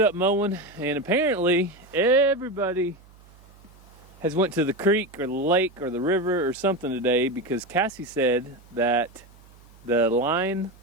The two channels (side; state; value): right; noise; hum, 26 dB below the sound